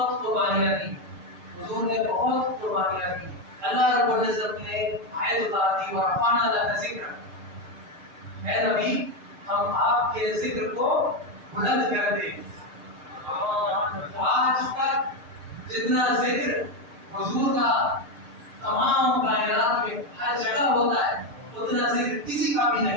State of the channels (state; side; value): late; left; 6.6 ms